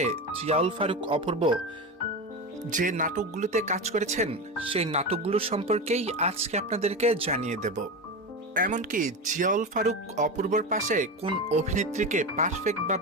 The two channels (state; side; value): normal; both; correlation 0.20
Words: জিয়াউল ফারুক অপূর্ব যে নাটকগুলোতে কাজ করেছেন সেই নাটকগুলোর সম্পর্কেই আজকে আপনাদেরকে জানিয়ে দেব। এমনকি জিয়াউল ফারুক অপূর্বর পাশে কোন অভিনেত্রীকে